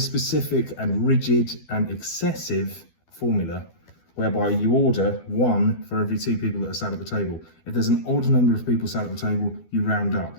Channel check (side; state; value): right; late; 12 ms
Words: and rigid and excessive formula whereby you order 1 for every 2 people that are sat at the table. If there's an odd number of people sat at the table, you round up.